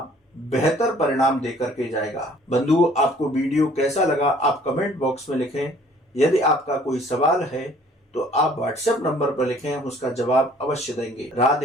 बेहतर परिणाम देकर के जाएगा। बंधुओं, आपको वीडियो कैसा लगा आप कमेंट बॉक्स में लिखें। यदि आपका कोई सवाल है तो आप व्हाट्सएप नंबर पर लिखें, हम उसका जवाब अवश्य देंगे।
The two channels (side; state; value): both; normal; correlation 0.56